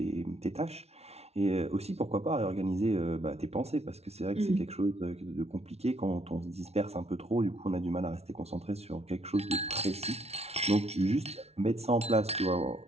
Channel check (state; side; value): late; left; 0.31 ms